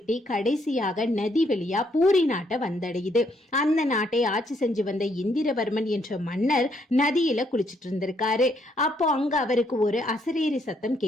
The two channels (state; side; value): normal; both; correlation 0.72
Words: கடைசியாக நதி வழியா பூரி நாட்டை வந்தடையுது. அந்த நாட்டை ஆட்சி செஞ்சு வந்த இந்திரவர்மன் என்ற மன்னர் நதியில குளிச்சிட்டு இருந்திருக்காரு. அப்போ அங்க அவருக்கு ஒரு அசரீரி சத்தம்